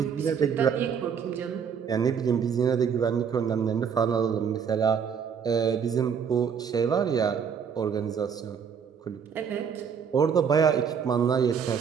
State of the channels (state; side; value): quieter; left; 7.0 dB